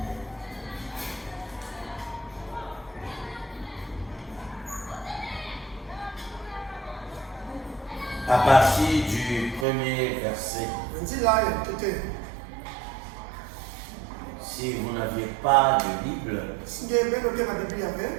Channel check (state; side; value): drops out; left; at 9.7 s